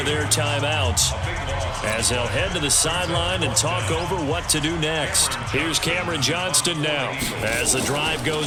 their timeouts as they'll head to the sideline and talk over what to do next. Here's Cameron Johnston now as the drive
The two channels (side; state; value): both; identical; correlation 1.00